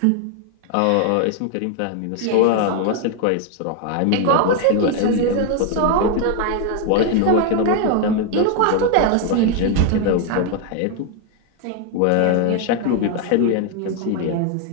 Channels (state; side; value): different; both; correlation 0.01